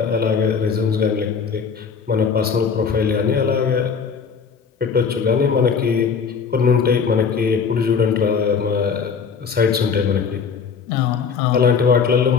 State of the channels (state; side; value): quieter; right; 6.0 dB